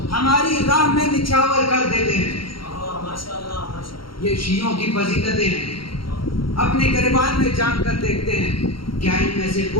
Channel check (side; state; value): right; late; 0.73 ms